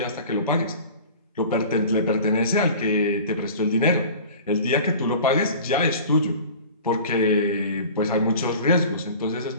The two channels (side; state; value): both; inverted; correlation -0.41